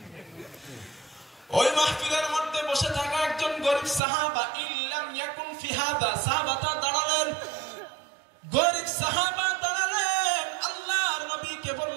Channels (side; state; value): left; drops out; at 4.0 s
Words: ওই মাহফিলের মধ্যে বসে থাকা একজন গরিব সাহাবা, ইল্লাম ইয়াকুন ফি হাদা, সাহাবাটা দাঁড়ালেন, গরিব সাহাবা দাঁড়ালেন, আল্লাহর নবীকে